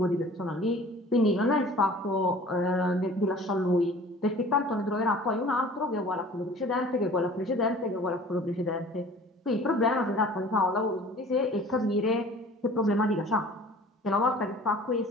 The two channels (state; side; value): normal; both; correlation 0.46